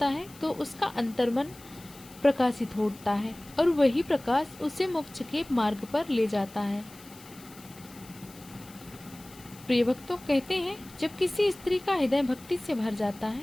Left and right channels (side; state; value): left; noise; hiss, 21 dB below the sound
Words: है तो उसका अंतर्मन प्रकाशित हो उठता है और वही प्रकाश उसे मोक्ष के मार्ग पर ले जाता है। प्रिय भक्तों, कहते हैं जब किसी स्त्री का हृदय भक्ति से भर जाता